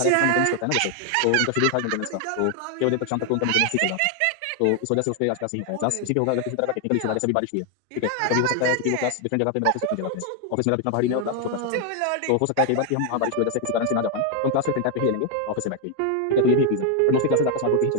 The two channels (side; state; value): both; different; correlation 0.00